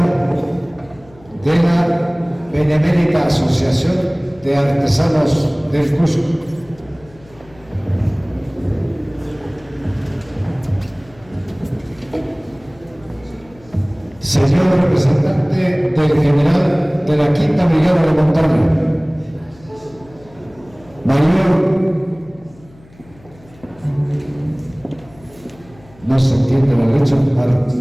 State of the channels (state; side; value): noise; left; hum, 26 dB below the sound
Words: de la Benemérita Asociación de Artesanos del Cusco. Señor representante del general de la Quinta Brigada de Montaña, mayor, no se entiende la letra,